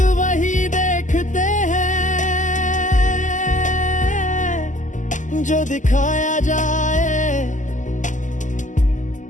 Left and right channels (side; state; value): right; late; 0.37 ms